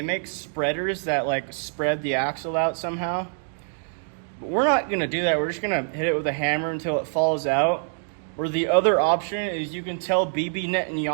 make spreaders that like spread the axle out somehow. But we're not gonna do that. We're just gonna hit it with a hammer until it falls out. Or the other option is you can tell Bibi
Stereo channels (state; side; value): silent; left; 62 dB below the other